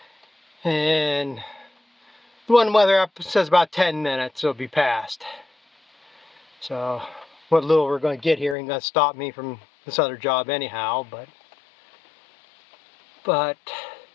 and the one weather app says about 10 minutes it'll be past. So what little we're going to get here ain't going to stop me from this other job anyhow, but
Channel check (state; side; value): drops out; right; at 8.6 s